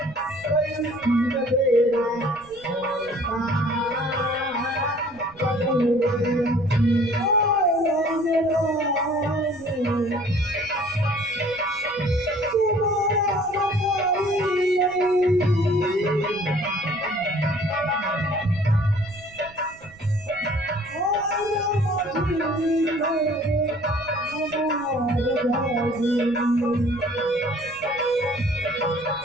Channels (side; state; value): right; noise; rumble, 24 dB below the sound